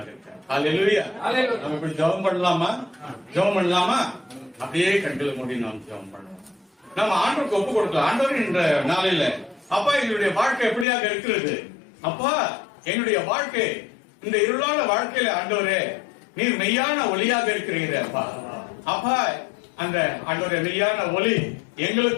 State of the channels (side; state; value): right; drops out; at 10.9 s